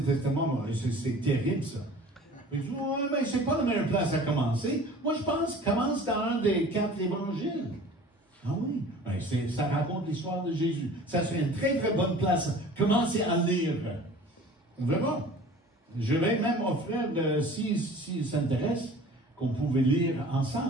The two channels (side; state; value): both; normal; correlation 0.45